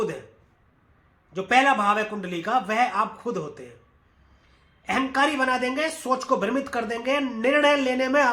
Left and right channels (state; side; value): identical; both; correlation 1.00